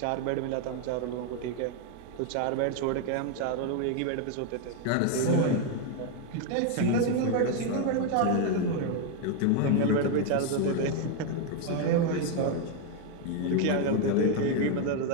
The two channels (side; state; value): both; different; correlation 0.01